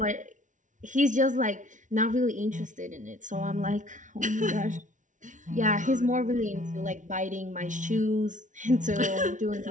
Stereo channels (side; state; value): left; late; 0.37 ms